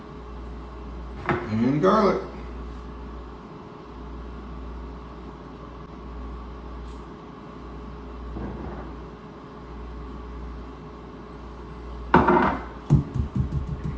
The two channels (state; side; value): identical; both; correlation 1.00